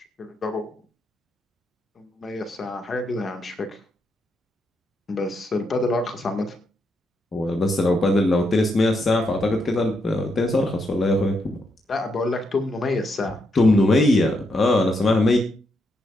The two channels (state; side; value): normal; both; correlation 0.80